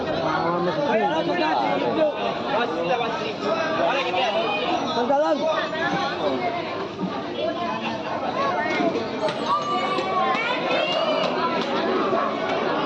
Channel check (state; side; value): identical; both; correlation 1.00